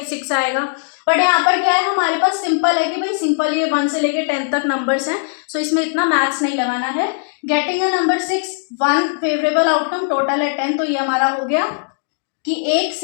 6 आएगा। बट यहाँ पर क्या है, हमारे पास सिंपल है कि भाई सिंपल ये 1 से लेके 10 तक नंबर्स हैं, सो इसमें इतना मैथ्स नहीं लगाना है। Getting a number 6, 1 favourable outcome, total है 10, तो ये हमारा हो गया कि एक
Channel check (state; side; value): silent; right; digital silence